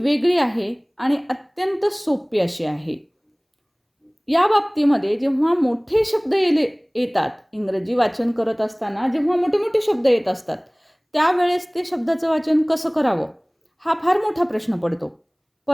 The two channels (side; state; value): both; identical; correlation 1.00